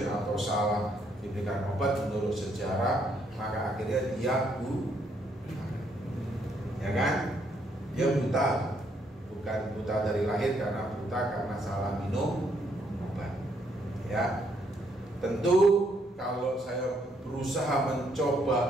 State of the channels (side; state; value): both; normal; correlation 0.72